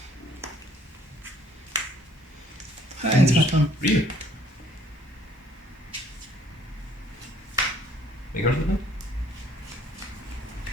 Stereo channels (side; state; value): both; normal; correlation 0.61